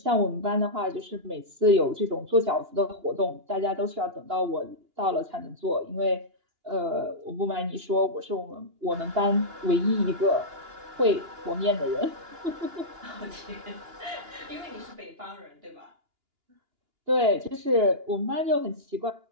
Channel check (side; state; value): left; late; 2.9 ms